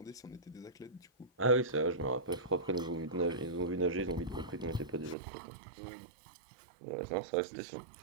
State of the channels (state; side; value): drops out; left; at 5.2 s